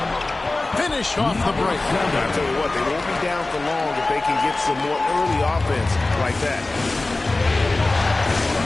Finish off the break. I tell you what, they won't be down for long if they can get some more early offense like that.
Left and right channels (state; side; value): quieter; right; 3.1 dB